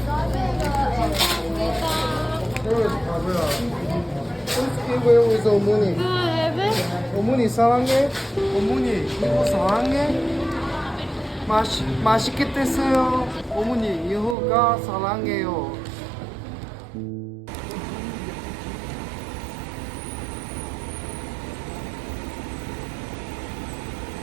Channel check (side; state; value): left; drops out; at 14.4 s